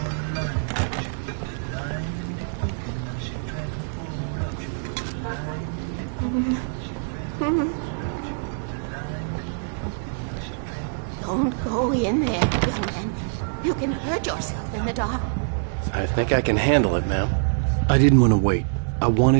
Don't go in there, young man. You can hurt yourself in the dark. I think I can handle it, ma'am. I didn't want to wait. I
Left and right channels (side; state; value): left; silent; digital silence